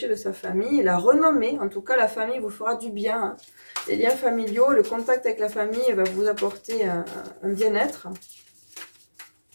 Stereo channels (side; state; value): both; inverted; correlation -1.00